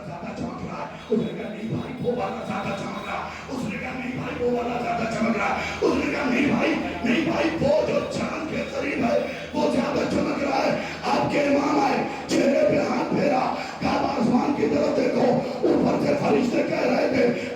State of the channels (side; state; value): both; identical; correlation 1.00